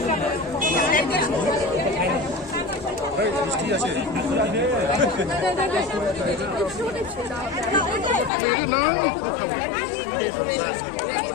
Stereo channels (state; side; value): drops out; right; at 8.3 s